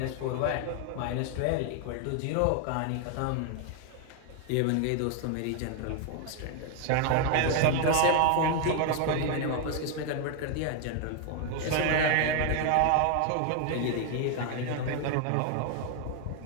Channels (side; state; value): both; different; correlation 0.00